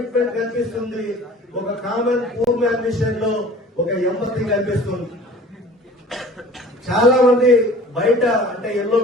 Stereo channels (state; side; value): normal; both; correlation 0.45